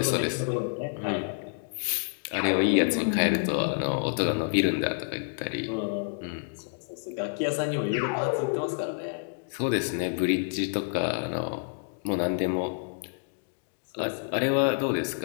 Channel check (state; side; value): silent; right; digital silence